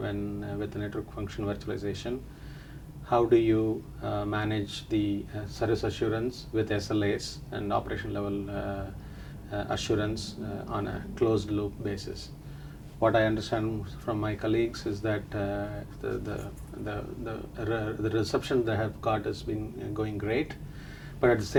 the network function virtualization, how do you manage the service assurance with SLAs and operation level assurance on a closed loop basis? What I understand from my colleagues is that the reception they have got has been going great, but at the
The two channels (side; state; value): both; identical; correlation 1.00